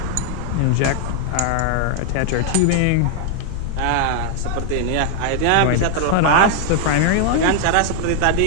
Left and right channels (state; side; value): different; both; correlation 0.00